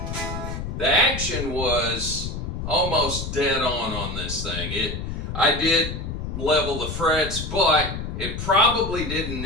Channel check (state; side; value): noise; left; rumble, 5 dB below the sound